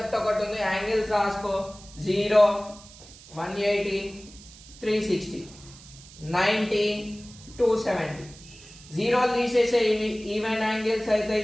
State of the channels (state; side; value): noise; right; hiss, 20 dB below the sound